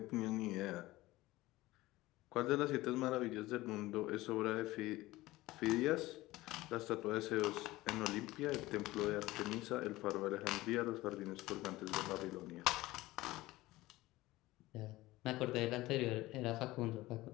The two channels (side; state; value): right; quieter; 18.4 dB